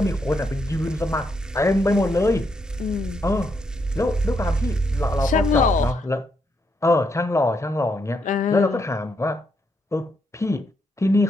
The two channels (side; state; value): both; normal; correlation 0.78